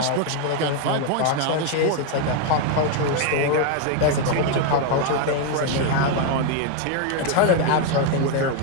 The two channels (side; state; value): both; different; correlation 0.01